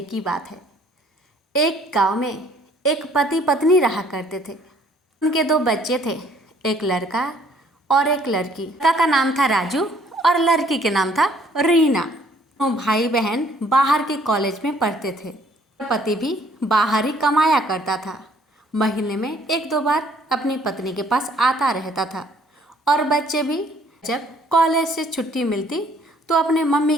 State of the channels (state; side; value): normal; both; correlation 0.61